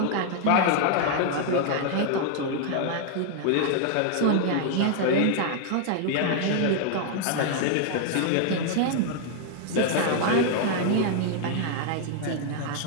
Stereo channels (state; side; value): different; both; correlation 0.00